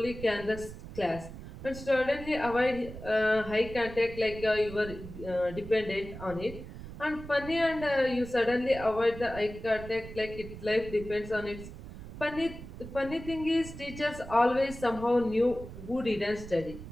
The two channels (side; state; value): right; noise; rumble, 12 dB below the sound